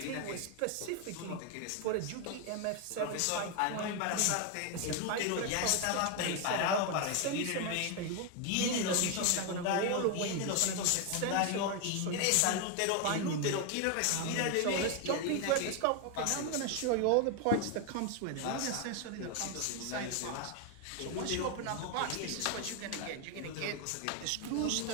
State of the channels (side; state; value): both; different; correlation 0.01